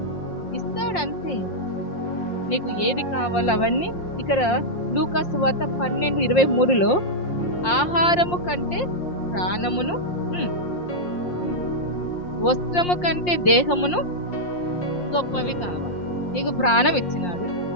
ఇస్తాడు. అంతే. నీకు ఏది కావాలో అవన్నీ. ఇక్కడ లూకా సువార్త 12:23లో ఆహారము కంటే ప్రాణమును, వస్త్రము కంటే దేహమును గొప్పవి కావాలి. నీకు ప్రాణం ఇచ్చినాడు,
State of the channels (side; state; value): right; late; 5.6 ms